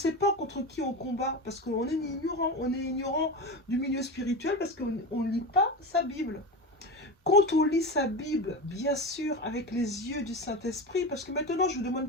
pas contre qui on combat, parce qu'on est ignorant. On est ignorant du milieu spirituel parce qu'on ne lit pas sa Bible. Quand on lit sa Bible, bien sûr, avec les yeux du Saint-Esprit, parce que maintenant, je ne vous demande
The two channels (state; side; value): normal; both; correlation 0.23